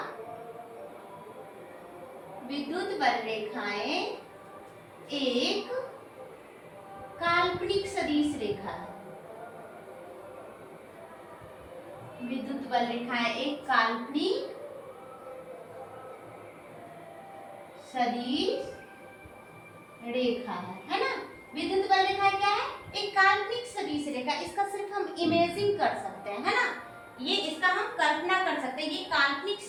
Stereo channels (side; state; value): both; identical; correlation 1.00